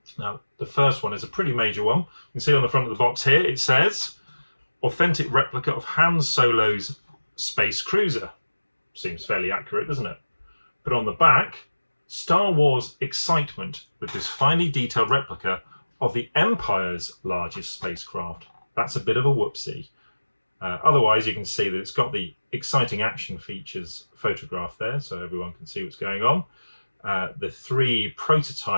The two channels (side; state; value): both; inverted; correlation -1.00